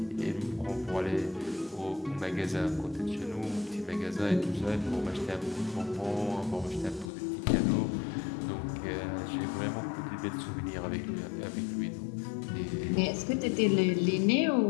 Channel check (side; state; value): right; drops out; at 7.1 s